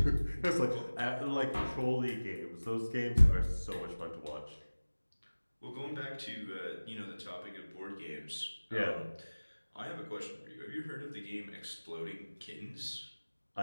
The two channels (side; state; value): both; inverted; correlation -1.00